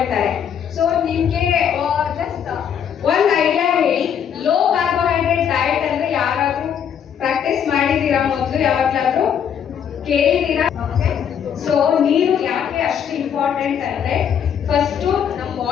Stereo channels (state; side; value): quieter; right; 8.4 dB